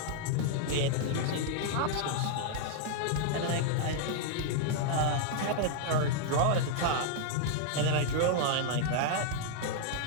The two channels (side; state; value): both; different; correlation -0.01